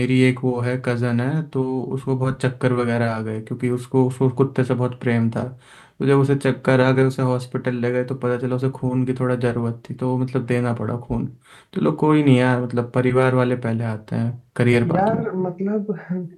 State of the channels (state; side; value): identical; both; correlation 1.00